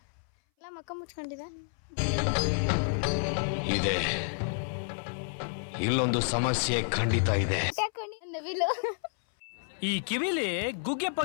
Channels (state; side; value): silent; right; 58 dB below the other